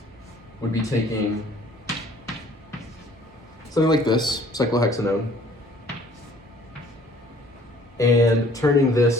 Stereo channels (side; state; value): both; normal; correlation 0.56